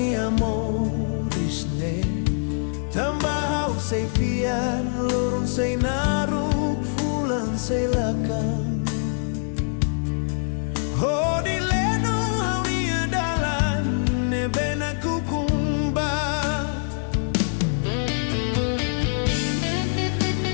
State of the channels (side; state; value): right; silent; digital silence